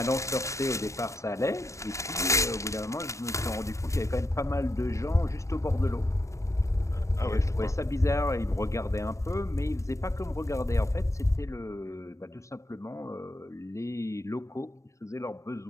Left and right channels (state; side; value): late; right; 0.15 ms